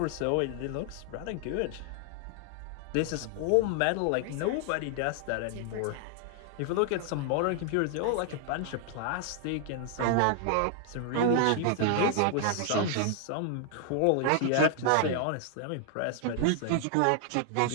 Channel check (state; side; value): different; both; correlation 0.00